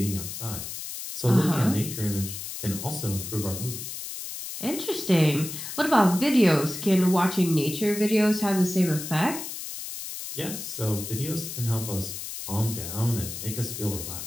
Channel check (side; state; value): left; noise; hiss, 8 dB below the sound